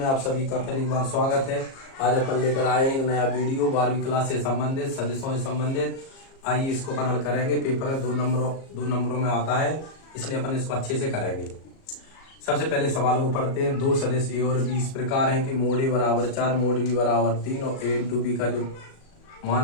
आप सभी का फिर एक बार स्वागत है। आज अपन लेकर आए एक नया वीडियो 12वीं क्लास से संबंधित सदिशों से संबंधित। आइए इसको अपन हल करेंगे। पेपर में दो नंबरों में आता है, इसलिए अपन इसको अच्छे से करेंगे। सबसे पहले सवालों को पढ़ते हैं। दो सदिश ए और बी इस प्रकार है कि मोड ए बराबर 4, मोड बी बराबर 3 और ए इंटू बी का जो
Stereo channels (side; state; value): right; late; 37 ms